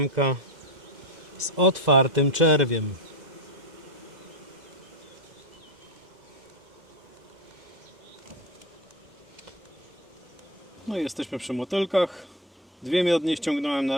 z otwartym czerwiem. No i jesteśmy przy motylkach. Dwie miodnie ściągnąłem na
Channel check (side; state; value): both; normal; correlation 0.18